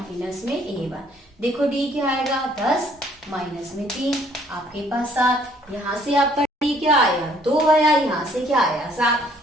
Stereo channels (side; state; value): both; normal; correlation 0.62